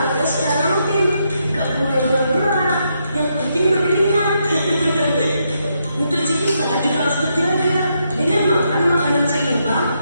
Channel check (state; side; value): inverted; both; correlation -0.79